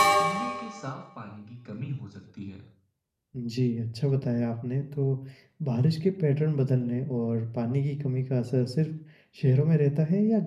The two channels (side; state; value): both; identical; correlation 1.00